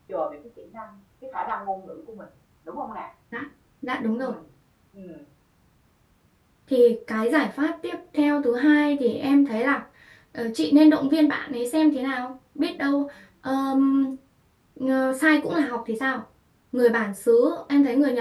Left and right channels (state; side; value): identical; both; correlation 1.00